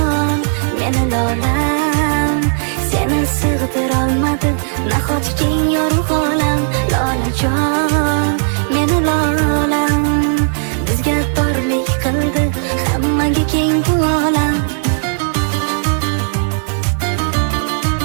meni lolam, seni sig'dirolmadi nahot keng yorug' olam. Lolajon, meni lolam, bizga torlik qildi hammaga keng bu olam.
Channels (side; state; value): left; silent; 63 dB below the other